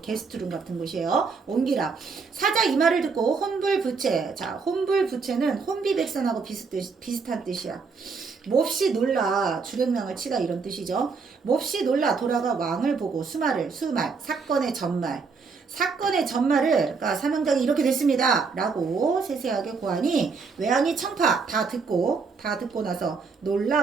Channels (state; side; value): quieter; left; 5.0 dB